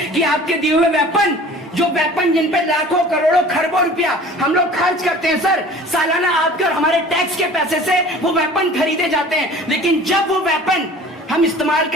कि आपके दिए हुए वेपन जिन पे लाखों करोड़ों खरबों रुपया हम लोग खर्च करते हैं सर, सालाना आपके और हमारे टैक्स के पैसे से वो वेपन खरीदे जाते हैं, लेकिन जब वो वेपन हम इस्तेमाल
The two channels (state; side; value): normal; both; correlation 0.44